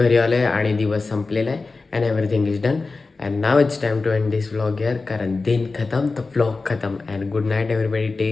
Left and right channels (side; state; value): right; quieter; 3.9 dB